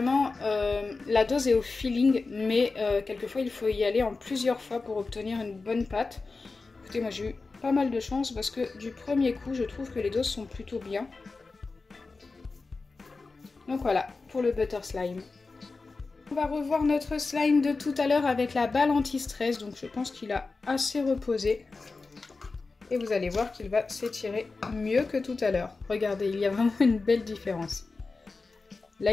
la dose est au feeling, mais quelquefois il faut y aller en plusieurs fois pour obtenir une bonne pâte. Écoutez, moi j'ai eu pas mal de chance parce que du premier coup, je trouve que les doses sont plutôt bien. Donc voilà, pour le butter slime. On va revoir notre slime de tout à l'heure avec la balle anti-stress, donc je pense qu'il a assez reposé. Et vous allez voir qu'il va s'étirer mieux que tout à l'heure. Regardez, il y a vraiment une belle différence. Là,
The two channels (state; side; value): quieter; right; 3.9 dB